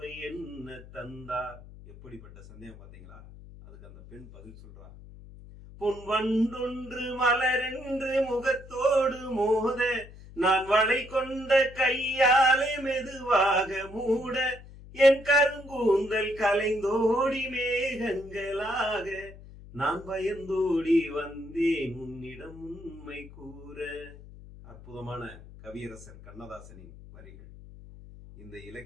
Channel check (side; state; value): left; noise; hum, 18 dB below the sound